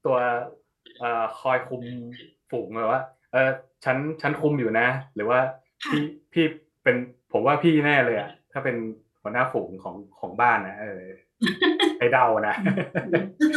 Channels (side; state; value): both; identical; correlation 1.00